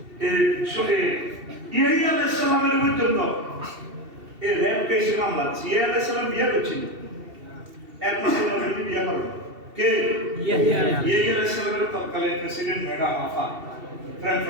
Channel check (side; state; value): left; late; 2.7 ms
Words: ইয়াহিয়া আলাইহিস সালামের পর্যন্ত এই রেপ কেসে মামলা ইয়াহিয়া আলাইহিস সালাম বিয়ে করছিল, একমাত্র নবী বিয়ে করেন কে? ইয়াহিয়া আলাইহিস সালামের তৎকালীন প্রেসিডেন্ট ম্যাডাম আফা প্রেম